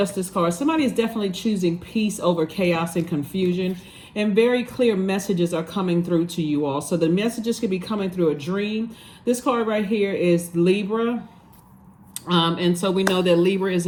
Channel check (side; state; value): both; identical; correlation 1.00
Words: card. Somebody is definitely choosing peace over chaos and confusion. And very clear messages are coming through to you all. So the messages could be coming through a dream. This card right here is Libra. And so we know that Libra is